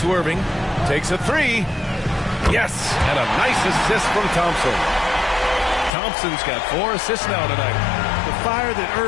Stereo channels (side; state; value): right; drops out; at 5.9 s